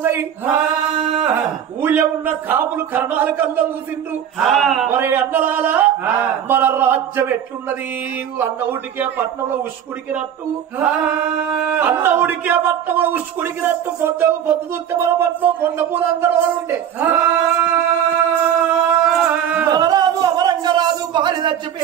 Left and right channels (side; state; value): left; quieter; 9.4 dB